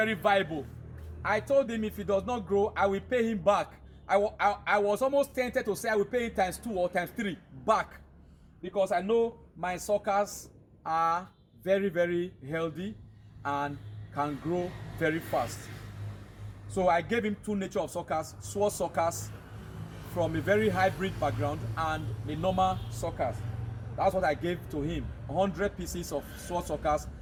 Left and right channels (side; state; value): both; identical; correlation 1.00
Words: viable. I told him if he does not grow, I will pay him back. I was almost tempted to say I will pay him times 2 or times 3 back, because I know my suckers are very, very healthy and can grow very fast. So I gave him 2 nature of suckers, sword suckers from a very hybrid background and the normal suckers. That's what I gave to him. 100 pieces of sword suckers